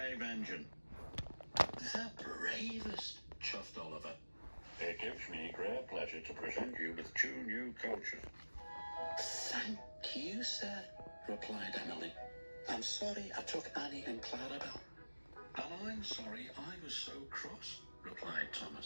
engine. The bravest, chuffed Oliver. It gives me great pleasure to present you with 2 new coaches. Thank you, sir, replied Emily. I'm sorry I took Annie and Clarabelle. And I'm sorry I was so cross, replied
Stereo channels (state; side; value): inverted; both; correlation -1.00